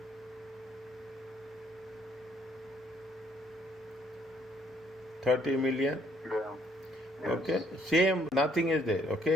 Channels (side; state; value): both; normal; correlation 0.66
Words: $30 million. Yeah. Yes. Okay, same, nothing is there.